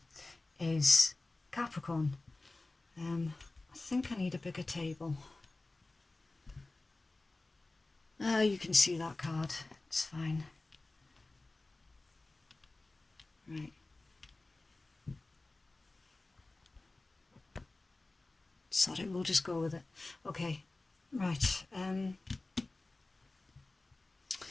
is Capricorn. I think I need a bigger table. You can see that card, it's fine. Right. Sorry, we'll just go with it. Okay, right.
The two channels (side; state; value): right; quieter; 3.1 dB